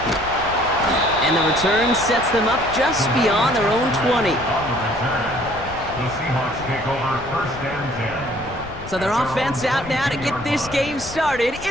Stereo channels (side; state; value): left; noise; rumble, 15 dB below the sound